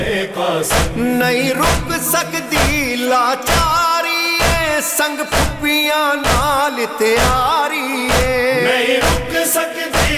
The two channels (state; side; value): identical; both; correlation 1.00